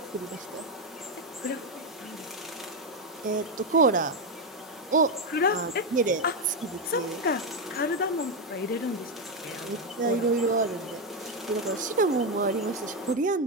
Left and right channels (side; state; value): both; normal; correlation 0.07